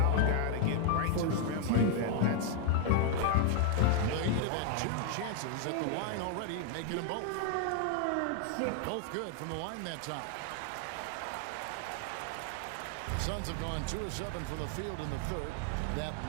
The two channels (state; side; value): different; both; correlation 0.00